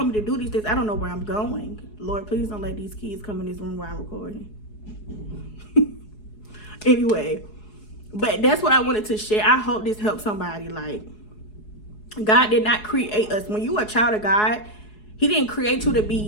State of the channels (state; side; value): late; right; 4.7 ms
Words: me to do these things, I don't know where I'm going. Lord, please don't let these kids come in this room while I'm recording. Anyway, but that's what I wanted to share. I hope this helps somebody. Like, God did not create us. When you are a child of God, he didn't create you to